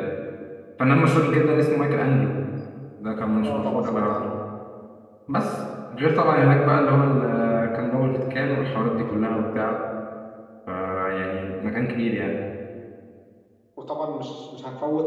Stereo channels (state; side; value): identical; both; correlation 1.00